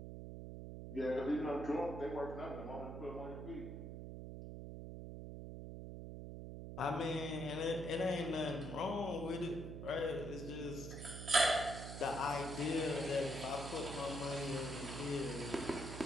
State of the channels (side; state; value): right; noise; hum, 8 dB below the sound